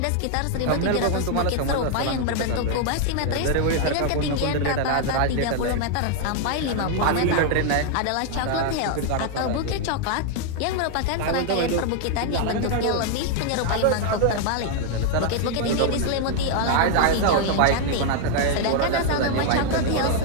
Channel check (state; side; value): different; both; correlation 0.00